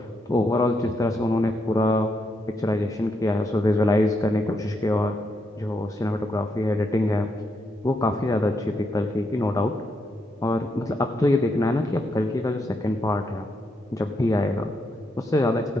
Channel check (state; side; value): normal; both; correlation 0.79